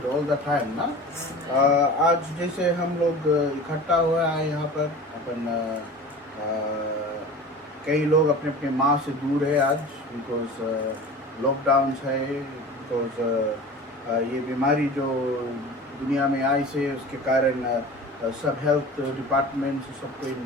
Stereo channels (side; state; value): both; normal; correlation 0.37